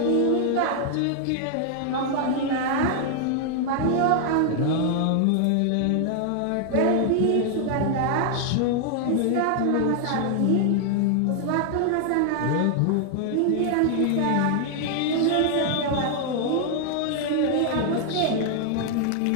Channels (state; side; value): different; both; correlation 0.00